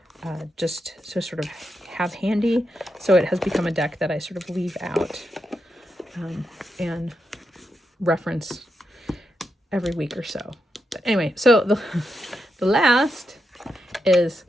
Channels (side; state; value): both; normal; correlation 0.85